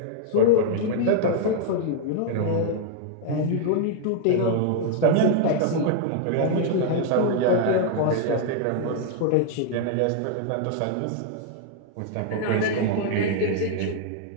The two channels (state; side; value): different; both; correlation -0.01